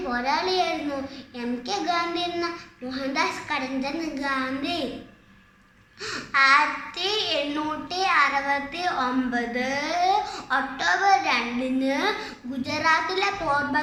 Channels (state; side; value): identical; both; correlation 1.00